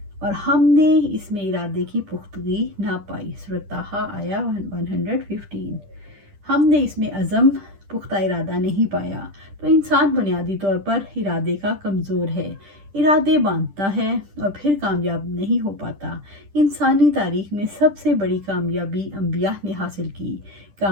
اور ہم نے اس میں ارادے کی پختگی نہ پائی۔ سورۃ طٰہٰ آیا 115۔ ہم نے اس میں عزم پختہ ارادہ نہیں پایا، تو انسان بنیادی طور پر ارادے کا کمزور ہے۔ ارادے باندھتا ہے اور پھر کامیاب نہیں ہو پاتا۔ انسانی تاریخ میں سب سے بڑی کامیابی انبیاء نے حاصل کی۔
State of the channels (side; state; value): left; late; 10 ms